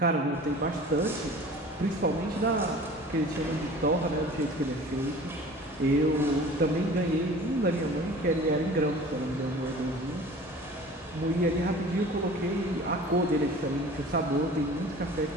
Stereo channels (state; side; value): normal; both; correlation 0.43